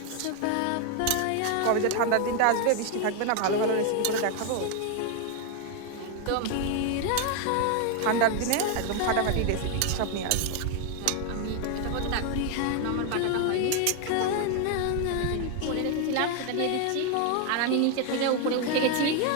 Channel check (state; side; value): different; both; correlation 0.01